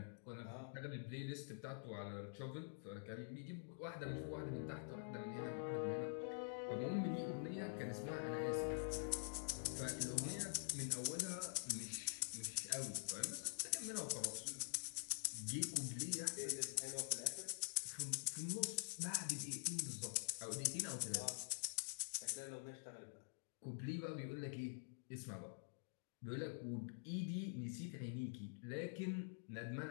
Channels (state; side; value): silent; right; digital silence